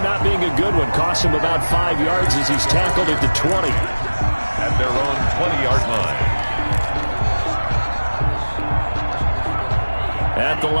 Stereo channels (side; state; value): both; inverted; correlation -1.00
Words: not being a good one. Costs him about 5 yards as he's tackled at the 20. At their own 20-yard line. At the